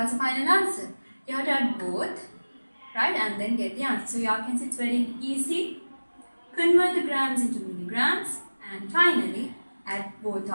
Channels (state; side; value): inverted; both; correlation -1.00